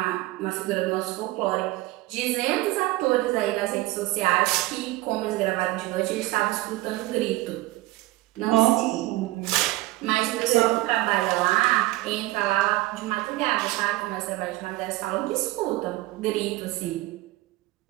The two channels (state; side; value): quieter; left; 18.7 dB